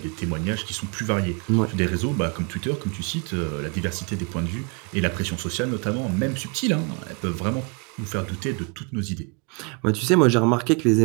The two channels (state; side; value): quieter; left; 32.9 dB